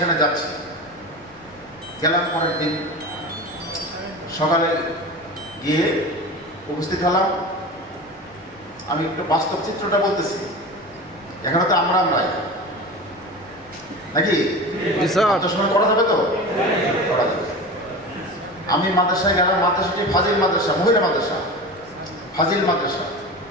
যাচ্ছি, গেলাম। পরের দিন সকালে গিয়ে উপস্থিত হলাম। আমি একটু বাস্তব চিত্রটা বলতেছি, এখানে তো আমরাই নাকি সময় করা যাবে তো, করা যাবে। আমি মাদ্রাসায় গেলাম। মাদ্রাসাটি ফাজিল মাদ্রাসা, মহিলা মাদ্রাসা, ফাজিল মাদ্রাসা।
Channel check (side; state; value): left; noise; rumble, 27 dB below the sound